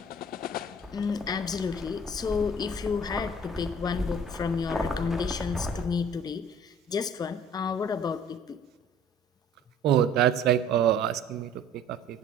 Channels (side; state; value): both; normal; correlation 0.51